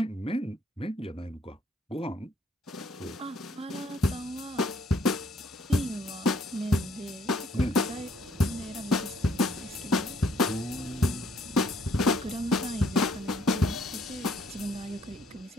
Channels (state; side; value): normal; both; correlation 0.65